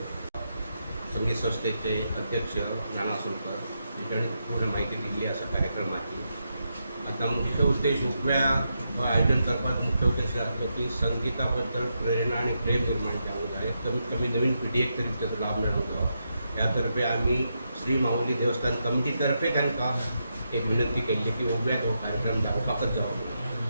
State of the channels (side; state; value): both; inverted; correlation -0.84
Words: संगीत संस्थेचे अध्यक्ष नाना आसोलकर हांणी पूर्ण माहिती दिली आसा कार्यक्रमाची. आता मुख्य उद्देश उगव्या आयोजन करपाचो मुख्य उद्देश आसलो की संगीता बद्दल प्रेरणा आणि प्रेम निर्माण जावंक जाय. कमीत कमी नवीन पिढयेक तरी ताचो लाभ मेळोंक जाय. ह्या तर्फे आमी श्री माऊली देवस्थान कमिटी तर्फे तांकां एक विनंती केल्ली की उगव्याक हो कार्यक्रम जावपाकच जावप ना